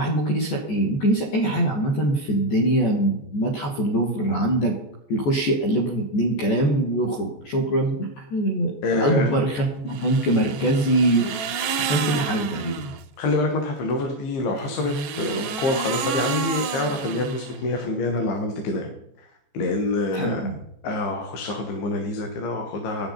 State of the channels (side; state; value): right; late; 14 ms